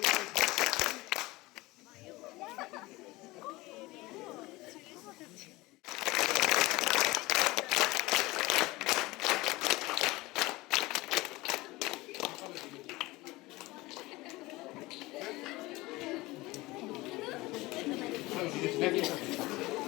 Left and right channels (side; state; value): right; quieter; 20.7 dB